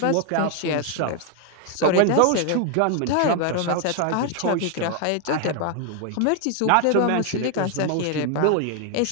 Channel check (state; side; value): different; both; correlation 0.00